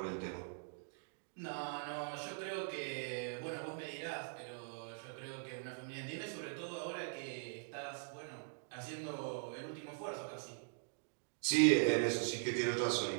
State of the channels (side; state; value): left; silent; digital silence